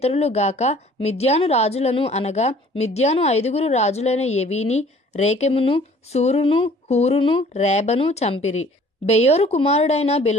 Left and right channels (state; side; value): normal; both; correlation 0.53